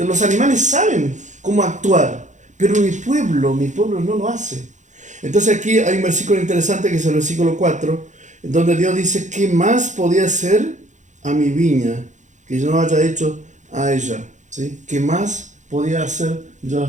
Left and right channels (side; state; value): left; late; 0.35 ms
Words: animales saben cómo actuar, pero mi pueblo no lo hace. Entonces aquí hay un versículo interesante que es el versículo 4, donde Dios dice, ¿qué más podía hacer a mi viña que yo no haya hecho a ella? ¿Sí? ¿Qué más podía hacer yo